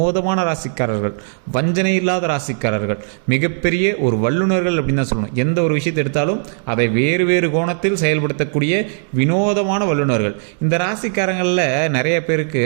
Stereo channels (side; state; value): left; silent; 67 dB below the other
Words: ராசிக்காரர்கள், வஞ்சனை இல்லாத ராசிக்காரர்கள், மிகப்பெரிய ஒரு வல்லுநர்கள் அப்படின்னு தான் சொல்லணும். எந்த ஒரு விஷயத்தை எடுத்தாலும் அதை வேறு வேறு கோணத்தில் செயல்படுத்தக்கூடிய வினோதமான வல்லுநர்கள். இந்த ராசிக்காரங்களில் நிறைய பேருக்கு